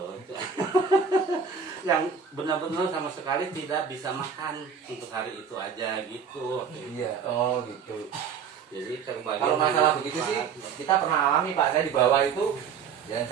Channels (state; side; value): quieter; left; 6.6 dB